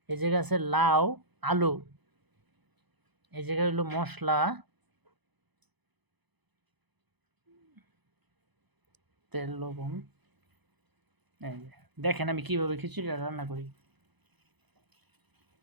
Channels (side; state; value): left; late; 1.0 ms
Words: এই জায়গায় আছে লাউ, আলু, এই জায়গায় হলো মশলা, তেল, লবণ। এই যে দেখেন আমি কিভাবে খিচুড়িটা রান্না করি।